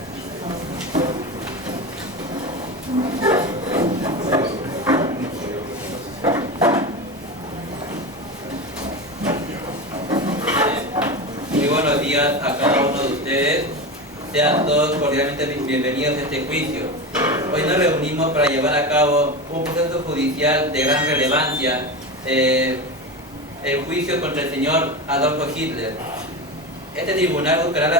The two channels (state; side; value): normal; both; correlation 0.22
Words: Muy buenos días a cada uno de ustedes. Sean todos cordialmente bienvenidos a este juicio. Hoy nos reunimos para llevar a cabo un proceso judicial de gran relevancia, el juicio contra el señor Adolfo Hitler. Este tribunal buscará la